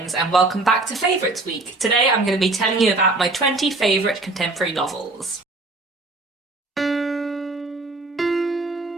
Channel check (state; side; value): quieter; left; 3.2 dB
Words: and welcome back to Favourites Week. Today I'm going to be telling you about my 20 favourite contemporary novels.